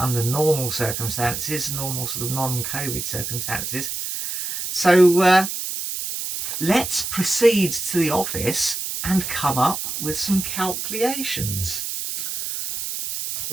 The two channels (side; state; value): right; noise; hiss, 4 dB below the sound